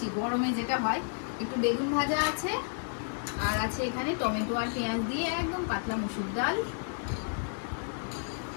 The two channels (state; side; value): silent; right; digital silence